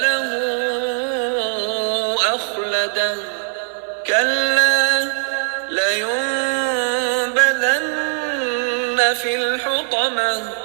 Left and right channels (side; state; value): left; silent; digital silence